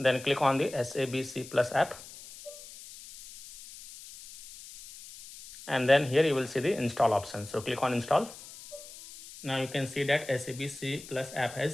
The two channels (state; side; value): noise; left; hiss, 16 dB below the sound